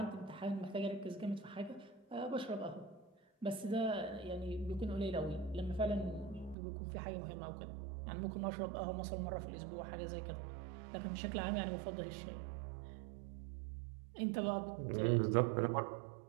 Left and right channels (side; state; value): left; drops out; at 6.6 s